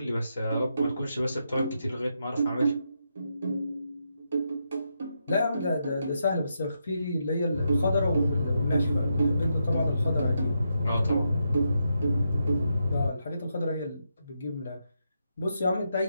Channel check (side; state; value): both; inverted; correlation -0.82